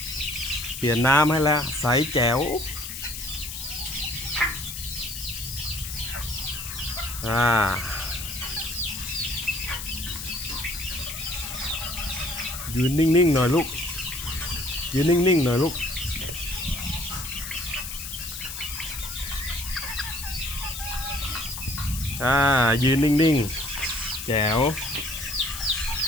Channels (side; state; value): left; noise; hiss, 8 dB below the sound